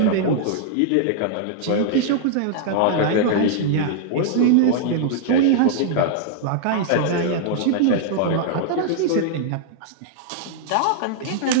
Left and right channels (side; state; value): both; different; correlation -0.01